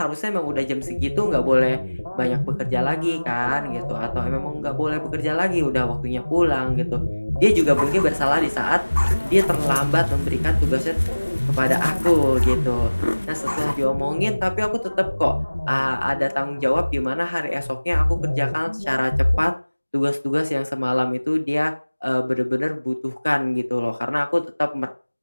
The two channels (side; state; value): both; inverted; correlation -1.00